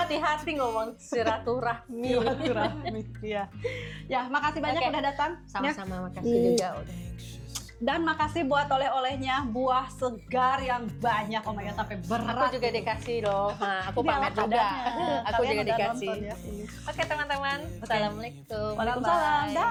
ngomong silaturahmi. Silaturahmi. Ya. Ya, makasih banyak Oke. udah datang. Ya. Sama-sama makasih juga udah. Dan makasih buat oleh-olehnya, buah segar yang banyak. Oh my god, sampai berat. Aku juga dikasih loh. Nah, aku Ini pamer ala juga. kadarnya. Aku Kalian juga udah dikasih. nonton ya ini. Oke teman-teman. Assalamualaikum. Waalaikumsalam. Bye-bye.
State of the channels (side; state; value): both; identical; correlation 1.00